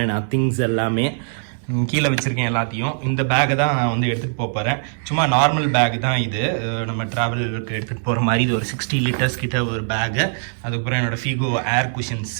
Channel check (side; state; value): left; silent; 65 dB below the other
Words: நான் திங்ஸ் எல்லாமே கீழே வச்சுருக்கேன் எல்லாத்தையும். இந்த பேக்கை தான் நான் எடுத்துகிட்டு போகிறேன். சும்மா நார்மல் பேக் தான் இது, நம்ம ட்ராவலுக்கு எடுத்துகிட்டு போகிற மாதிரி. இது ஒரு 60 லிட்டர்ஸ் கிட்ட ஒரு பேக்கு. அதுக்கப்புறம் என்னோடய ஃபிகோ ஏர் குஷன்